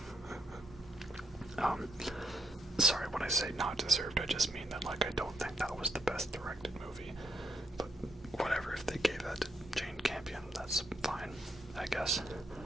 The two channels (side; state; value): both; normal; correlation 0.76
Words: Sorry, when I say not deserved, I just mean that, like, I don't think that was the best directed movie. But whatever, if they gave that to Jane Campion, that's fine, I guess.